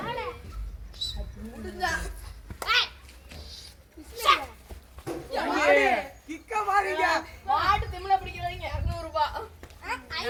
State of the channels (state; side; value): identical; both; correlation 1.00